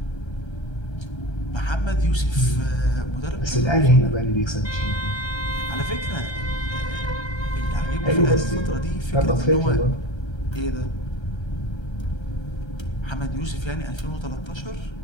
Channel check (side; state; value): right; late; 1.3 ms